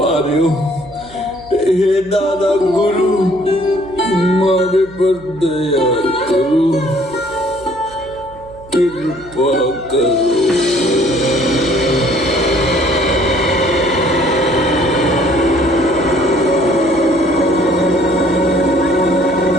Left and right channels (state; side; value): noise; right; hum, 22 dB below the sound